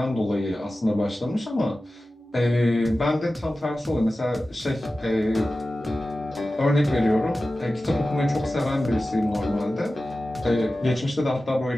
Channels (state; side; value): normal; both; correlation 0.95